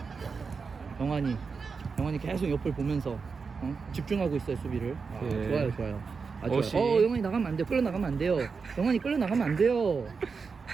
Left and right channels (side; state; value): left; quieter; 5.1 dB